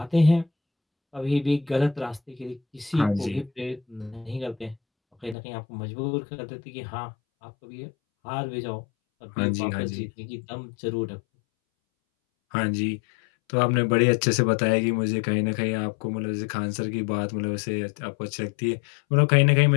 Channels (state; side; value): drops out; right; at 5.4 s